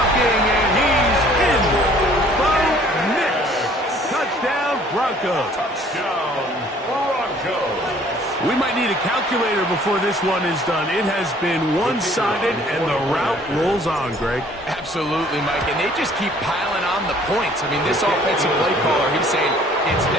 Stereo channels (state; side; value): normal; both; correlation 0.56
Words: and he's in. Bo Nix. Touchdown, Broncos. Touchdown, Broncos. We might need a calculator before this one is done. It has been one-sided, and the route rolls on, Greg. Absolutely, Mike, and they just keep piling on the points. I mean, this offensive play caller, he's saying it's